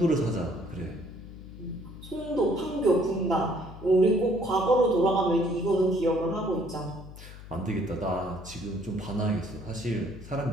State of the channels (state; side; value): noise; left; hum, 15 dB below the sound